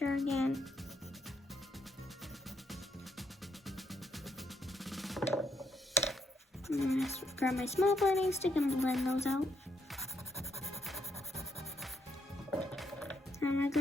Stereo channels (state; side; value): normal; both; correlation 0.76